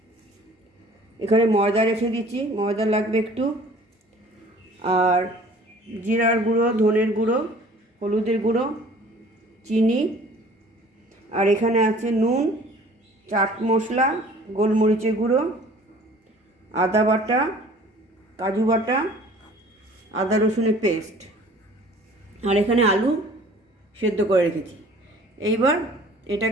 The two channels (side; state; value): both; normal; correlation 0.50